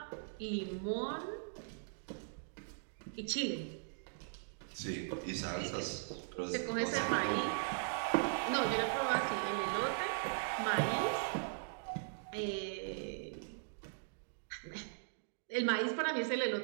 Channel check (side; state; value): left; silent; digital silence